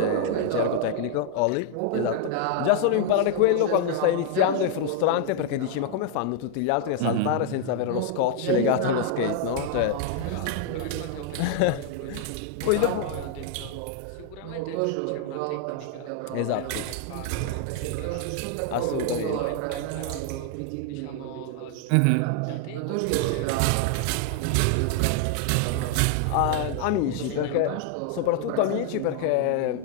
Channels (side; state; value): both; different; correlation 0.00